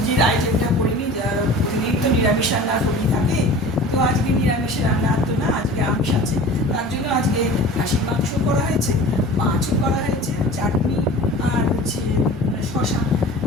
আইটেমটা করিনি, প্রতিদিন তো নিরামিষ রান্না করি থাকে, তো আজকে নিরামিষের রান্না তো না, আজকে আমিষ আছে। তার জন্য আজকে খাসির মাংস করা হয়েছে, মাছও করা হয়েছে, চাটনি আর হচ্ছে শশা,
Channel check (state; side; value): normal; both; correlation 0.40